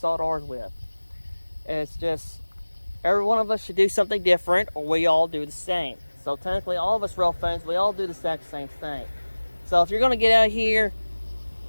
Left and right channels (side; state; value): both; inverted; correlation -1.00